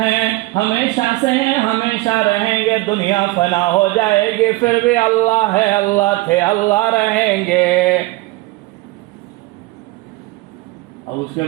ہمیشہ سے ہیں ہمیشہ رہیں گے، دنیا فنا ہو جائے گی پھر بھی اللہ ہے، اللہ تھے، اللہ رہیں گے۔ اب اس کے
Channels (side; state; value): left; quieter; 19.9 dB